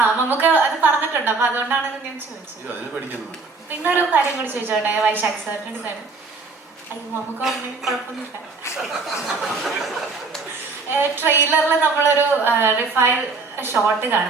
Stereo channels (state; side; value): quieter; left; 4.2 dB